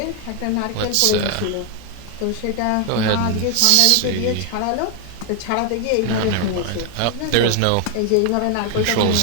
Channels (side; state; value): both; different; correlation 0.00